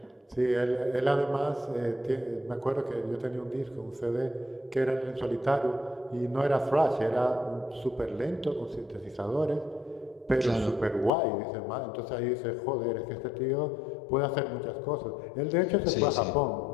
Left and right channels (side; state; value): right; drops out; at 11.1 s